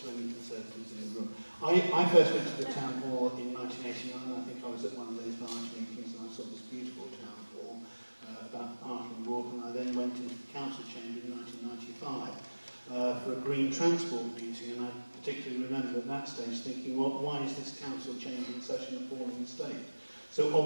to any Conservatives in the room. I first went to the town hall in 1989. I think I was at one of those large meetings and I saw this beautiful town hall about the parking walk, and I then went into the council chamber in 1995 for a green transport meeting, and I particularly remember at that stage thinking, well, why is this council chamber in such an appalling state? So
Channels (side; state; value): both; inverted; correlation -1.00